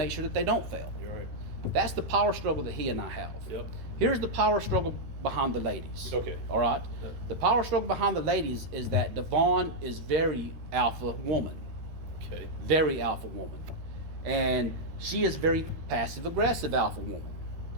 sure that they don't fail. you're right. That's the power struggle that he and I have. Yep. Here's the power struggle behind the ladies. Okay. All right. Yeah. The power struggle behind the ladies is that Devon is very alpha woman, Okay. very alpha woman, and she is very passive aggressive alpha woman.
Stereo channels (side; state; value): left; late; 13 ms